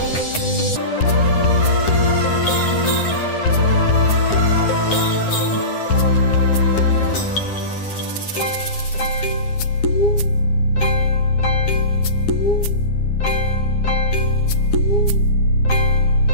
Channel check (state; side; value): late; right; 9.8 ms